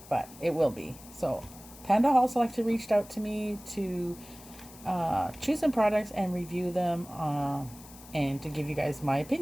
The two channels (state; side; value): noise; left; hiss, 19 dB below the sound